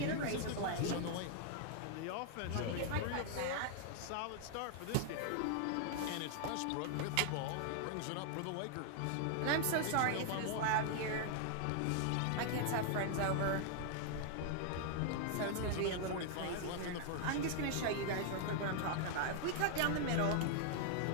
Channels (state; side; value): different; both; correlation 0.00